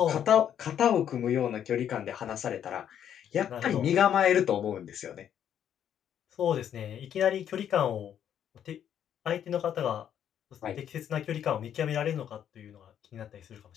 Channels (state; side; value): quieter; right; 9.5 dB